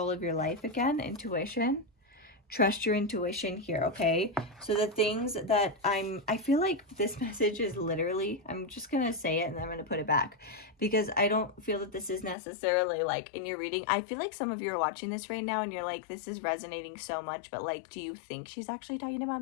of your life again, intuition. Trust your intuition here, okay? So the things that I feel like this message is literally, I'm just going to say it and then I'm going to put it back because I don't feel that this is necessarily like in your reading. I feel like some of you are watching this right now and you're like, this is resonating so much, but like, do you think she's actually talking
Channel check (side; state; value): right; drops out; at 12.4 s